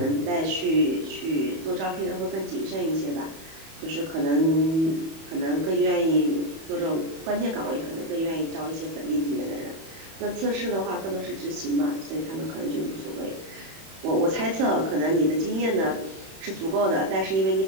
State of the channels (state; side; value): late; left; 31 ms